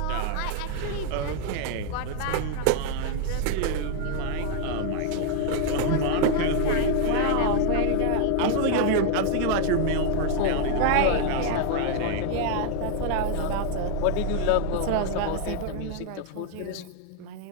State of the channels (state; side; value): different; both; correlation 0.00